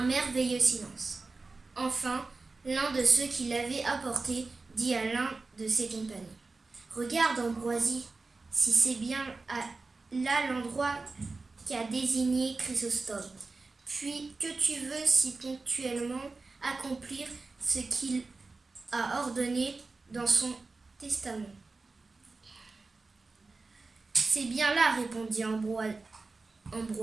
merveilleux silence. Enfin, l'un de ceux qui l'avaient apporté dit à l'un de ses compagnons: « Regarde, Ambroisie, si c'est bien là l'endroit qu'a désigné Chrysostome. Puis que tu veux si ponctuellement accomplir ce qu'il a ordonné dans son testament. » « C'est bien là, répondit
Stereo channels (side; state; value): left; quieter; 3.8 dB